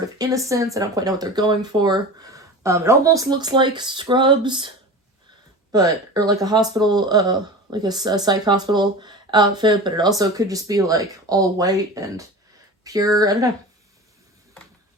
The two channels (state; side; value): normal; both; correlation 0.33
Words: of innocence. I don't quite know what they're going for. It almost looks like Scrubs, or like a hospital, like a psych hospital outfit, but it also could just be like all white and pure. I don't know.